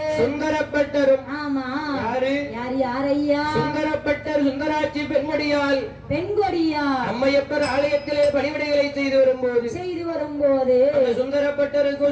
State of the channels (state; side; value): identical; both; correlation 1.00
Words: சுந்தரப்பட்டரும். ஆமா, யாரையா? சுந்தரப்பட்டர் சுந்தராட்சி பெண்கொடியால் அம்மையப்பர் ஆலயத்திலே பணிவிடைகளை செய்து வரும்போது அந்த